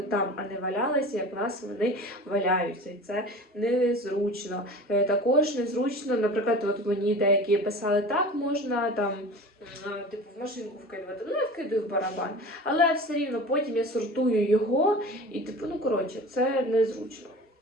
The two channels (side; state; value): both; normal; correlation 0.37